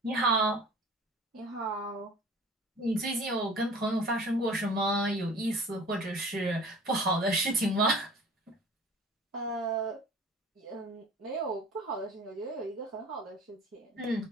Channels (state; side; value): normal; both; correlation 0.44